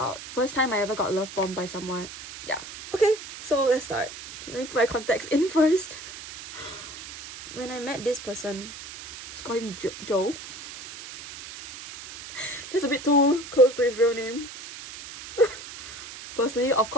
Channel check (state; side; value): noise; right; hiss, 13 dB below the sound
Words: first time I ever got love bombed by someone. Yeah. Okay, so let's start. Let me put my context in first. When I met this person, let's call him Joe. That's a bit too close to his real name. Firstly, of